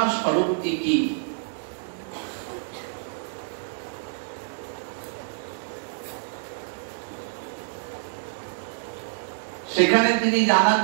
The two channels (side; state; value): left; silent; 60 dB below the other